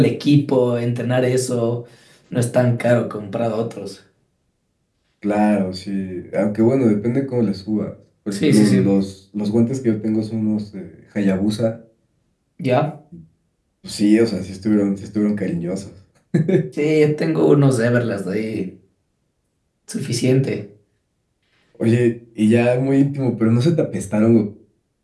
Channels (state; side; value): identical; both; correlation 1.00